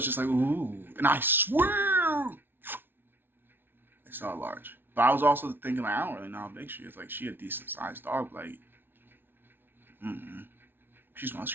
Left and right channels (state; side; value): late; left; 0.10 ms